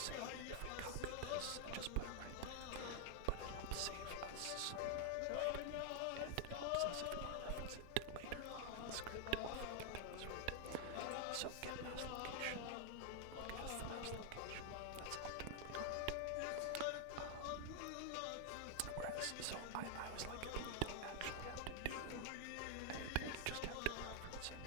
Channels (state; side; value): different; both; correlation 0.00